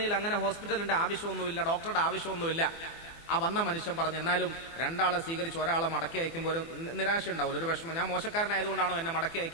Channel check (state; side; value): late; right; 24 ms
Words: അങ്ങനെ ഹോസ്പിറ്റലിന്റെ ആവശ്യമൊന്നുമില്ല, ഡോക്ടറുടെ ആവശ്യമൊന്നുമില്ല. ആ വന്ന മനുഷ്യൻ പറഞ്ഞു, എന്നാലും 2 ആളെ സ്വീകരിച്ച് ഒരാളെ മടക്കി അയക്കുമ്പോൾ ഒരു നിരാശ ഉണ്ടാവില്ല, ഒരു വിഷമം. ഞാൻ മോശക്കാരനായതുകൊണ്ടാണോ എന്നെ മടക്കി